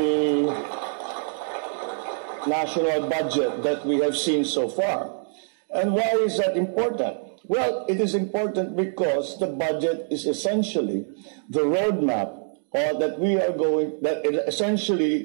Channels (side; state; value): left; silent; digital silence